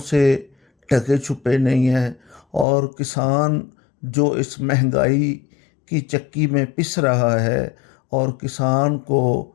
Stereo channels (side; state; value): right; drops out; at 2.7 s